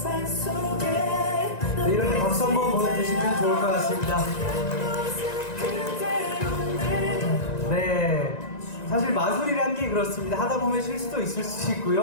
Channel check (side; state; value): right; late; 1.9 ms